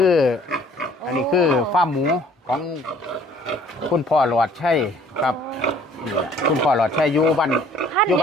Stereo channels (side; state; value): both; normal; correlation 0.56